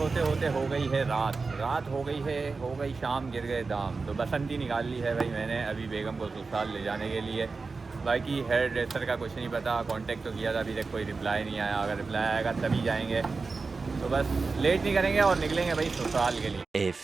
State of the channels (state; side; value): quieter; left; 4.2 dB